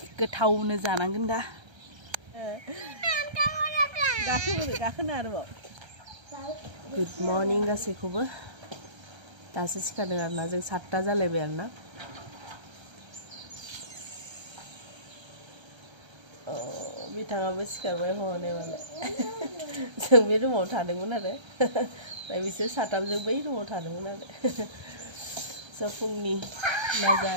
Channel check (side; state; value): left; late; 1.3 ms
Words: गोथावनो जानांगोन दा गाखोनो आरोबाव गुड मर्निं गासैखौबो दासो सिखारदों आरोना जों 7टा जालायबाय आरोना बिथाङाबो सिखारबाय हनै मालाय जों बे रुमाव थादोंमोन आरो ओमफ्राय बिसोर साथामजों बै रुमाव थादोंमोन आरो स' फुंनि